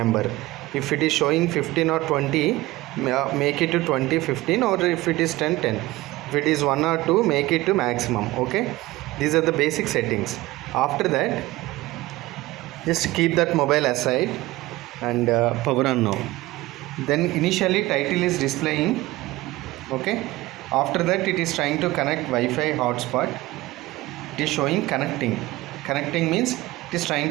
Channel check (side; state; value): left; quieter; 18.9 dB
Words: If it is showing 15 or 20, make it to 20, 15, or if it is 10, 10. If it is 1 or 2, make it to maximum. Okay, these are the basic settings. After that, just keep that mobile aside and power on now. Then initially title is displaying. Okay, after that it is trying to connect Wi-Fi hotspot. It is showing connecting. Connecting means it is trying